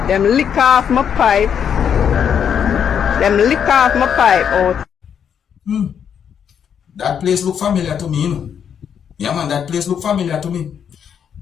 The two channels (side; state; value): right; quieter; 8.0 dB